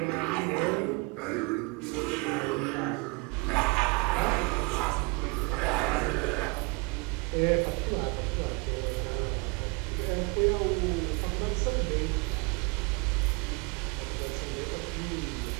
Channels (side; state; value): left; quieter; 29.4 dB